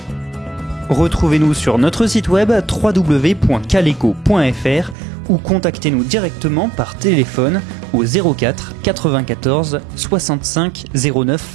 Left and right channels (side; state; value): left; drops out; at 5.0 s